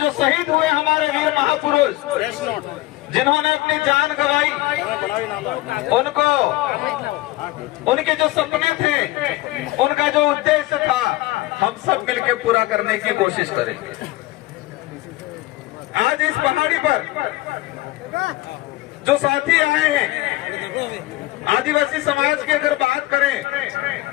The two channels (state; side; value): quieter; right; 18.8 dB